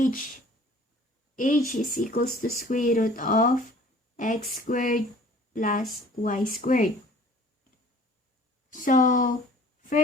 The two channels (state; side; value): normal; both; correlation 0.50